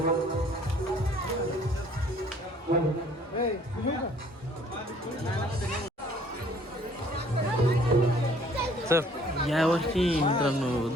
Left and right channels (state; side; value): normal; both; correlation 0.58